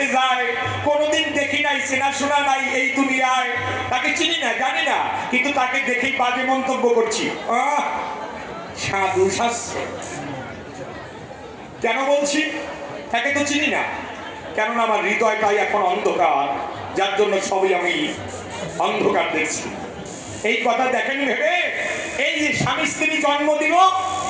যায়, কোনোদিন দেখি নাই, চেনাশোনা নাই এই দুনিয়ায়, তাকে চিনি না জানি না, কিন্তু তাকে দেখেই বাজে মন্তব্য করছি, সাধু শাস্ত্র। কেন বলছি? তাকে তো চিনি না, কেননা আমার হৃদয়টাই এখন অন্ধকার, যার জন্য সবই আমি অন্ধকার দেখছি। এই কথা দেখেন ভেবে এই যে স্বামী স্ত্রী জন্ম দিল,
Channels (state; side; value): identical; both; correlation 1.00